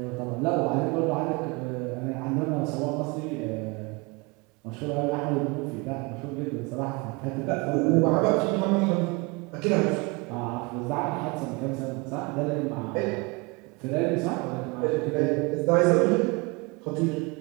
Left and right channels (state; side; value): quieter; left; 27.4 dB